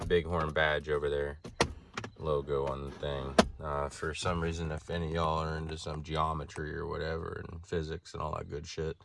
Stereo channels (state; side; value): identical; both; correlation 1.00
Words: BigHorn badge over there. Logo on the thing. For some reason, if any of y'all are into some geometry or whatever and physics and all that good shit,